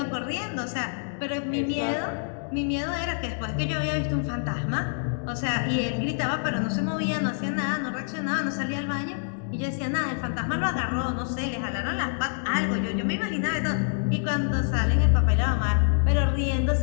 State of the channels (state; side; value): silent; right; digital silence